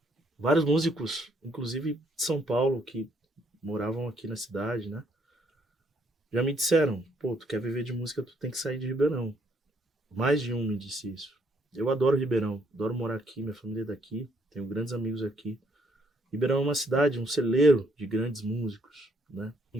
vários músicos, inclusive de São Paulo, que moravam aqui na cidade, né? Já me disseram, pô, tu quer viver de música, tu tem que sair de Ribeirão. Mais de um me disse isso. Eu adoro Ribeirão, adoro morar aqui, minha família é daqui, tenho grandes amigos aqui. Ribeirão é uma cidade, um celeiro de grandes músicos, né?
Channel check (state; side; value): normal; both; correlation 0.69